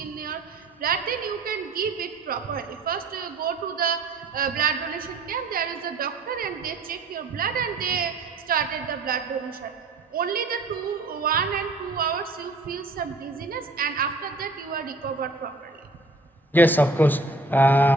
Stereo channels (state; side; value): quieter; left; 3.1 dB